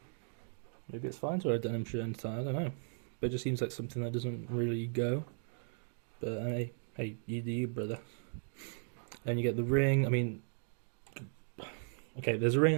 Maybe it's fine to wear a denim shirt inside. I don't know. But it just seems like something that doesn't really go. But hey, you do you, brother. Then you get the ring. I mean, okay, there's a ring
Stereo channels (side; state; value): left; silent; 53 dB below the other